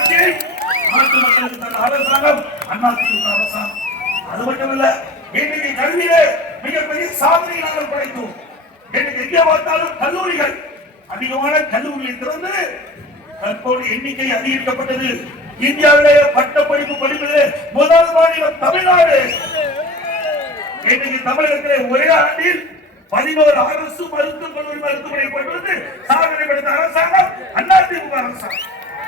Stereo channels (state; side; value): normal; both; correlation 0.35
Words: நாட்டு மக்களுக்கு தந்த அரசாங்கம் அதிமுக அரசாங்கம். அது மட்டுமல்ல, இன்னைக்கு கல்வியிலே மிகப்பெரிய சாதனை நாங்கள் படைத்தோம். இன்னைக்கு எங்கே பார்த்தாலும் கல்லூரிகள், அதிகமான கல்லூரிகளை திறந்து தற்போது எண்ணிக்கை அதிகரிக்கப்பட்டது. இந்தியாவிலேயே பட்டப்படிப்பு படிப்பது முதல் மாநிலம் தமிழ்நாடு. இன்னைக்கு தமிழகத்திலே ஒரே ஆண்டில் 11 அரசு மருத்துவக் கல்லூரி மருத்துவமனை கொண்டு வந்து சாதனை படைத்த அரசாங்கம் அதிமுக அரசாங்கம்.